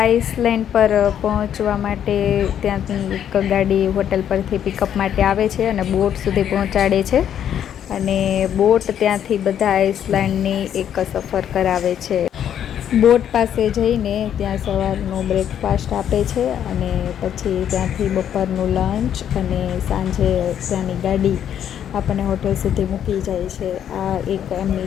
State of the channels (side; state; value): right; quieter; 9.6 dB